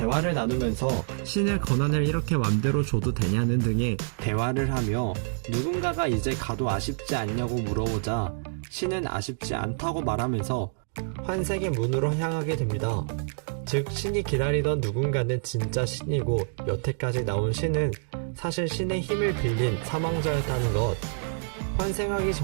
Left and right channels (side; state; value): left; silent; digital silence